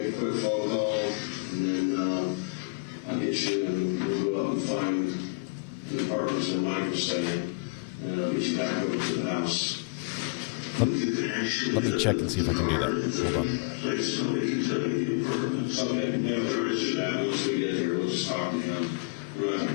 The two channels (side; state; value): right; quieter; 29.3 dB